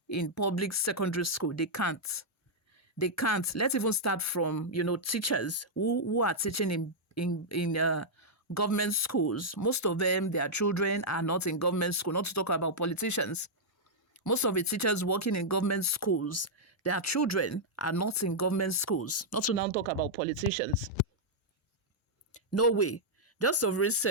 in public secondary school? They can't. They can't. Let's even start from, teachers who are teaching in government schools. Most of them, their children are not in government school, not to talk about politicians. Most of the teachers working in government schools, their children are not in government schools, not to now talk about politicians. No way. Just of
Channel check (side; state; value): both; normal; correlation -0.06